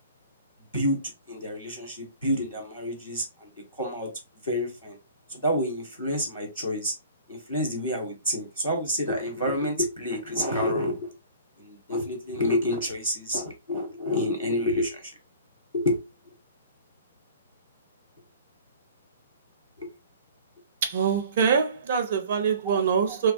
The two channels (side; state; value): both; inverted; correlation -0.45